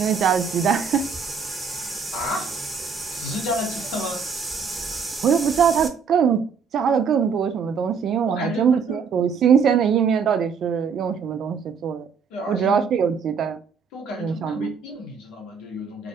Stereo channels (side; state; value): left; quieter; 6.0 dB